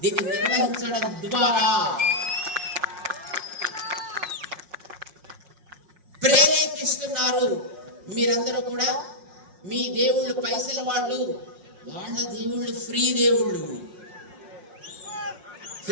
దీన్ని నిర్వహించడం ద్వారా ప్రేరేపిస్తున్నారు. మీరందరూ కూడా మీ దేవుళ్ళు పైసల వాళ్ళు, వాళ్ళ దేవుళ్ళు ఫ్రీ దేవుళ్ళు.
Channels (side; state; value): left; late; 5.5 ms